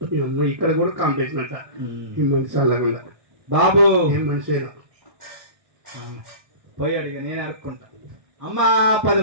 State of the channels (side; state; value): left; late; 1.6 ms